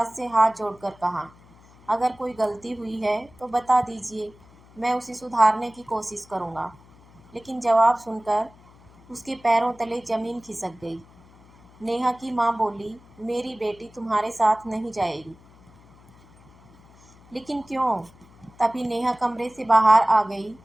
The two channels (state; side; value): noise; left; hum, 26 dB below the sound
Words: से हाथ जोड़कर कहा, अगर कोई गलती हुई है तो बता दीजिए, मैं उसे सुधारने की कोशिश करूंगा। लेकिन जवाब सुनकर उसके पैरों तले ज़मीन खिसक गई। नेहा की माँ बोली, मेरी बेटी तुम्हारे साथ नहीं जाएगी। लेकिन क्यों? तभी नेहा कमरे से बाहर आ गई